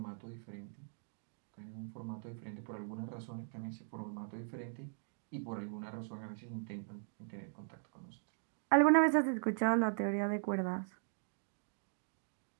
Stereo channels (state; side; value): silent; left; digital silence